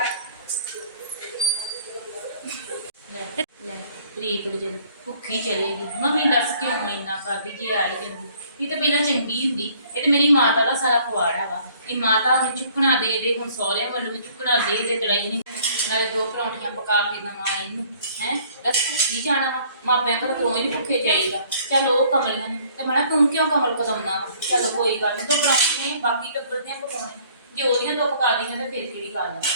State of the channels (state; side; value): inverted; both; correlation -0.58